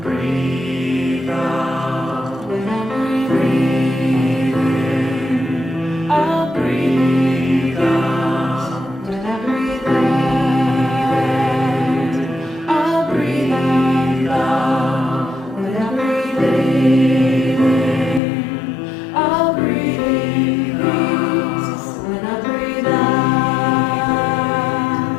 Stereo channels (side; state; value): right; drops out; at 18.2 s